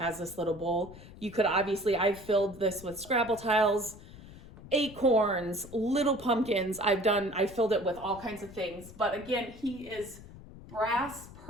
this little bowl. You could obviously, I've filled this with Scrabble tiles, acorns, little pumpkins. I filled it with all kinds of things. But again, he is brass,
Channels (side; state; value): left; noise; rumble, 17 dB below the sound